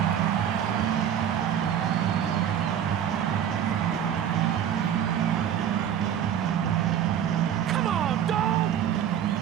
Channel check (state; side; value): quieter; left; 9.6 dB